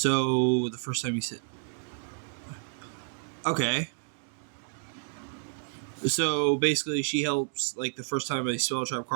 the first time you said... Okay. So, basically, she helps, the first time a spell trap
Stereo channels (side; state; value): left; silent; 58 dB below the other